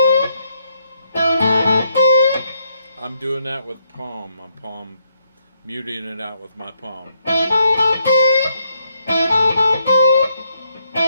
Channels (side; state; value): both; inverted; correlation -0.76